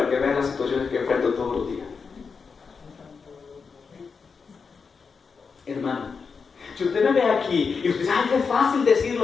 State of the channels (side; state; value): right; quieter; 5.4 dB